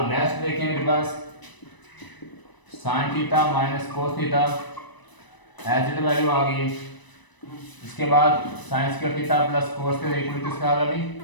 नेक्स्ट देखें मेरे पास sine theta minus cos theta as it value आ गई। इसके बाद sine square theta plus cos के इक्वल किसका आ गया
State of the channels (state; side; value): late; right; 1.0 ms